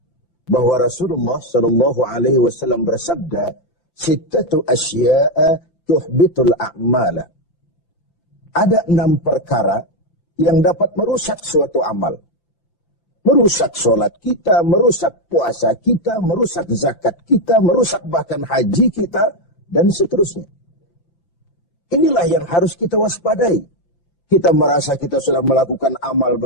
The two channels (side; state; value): right; late; 5.8 ms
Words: bahwa Rasulullah SAW bersabda, "Sittatu asya'a tuhbitul a'mala." Ada 6 perkara yang dapat merusak suatu amal. Merusak sholat kita, merusak puasa kita, merusak zakat kita, merusak bahkan haji kita, dan seterusnya. Inilah yang harus kita waspadai. Kita merasa kita sudah melakukan amal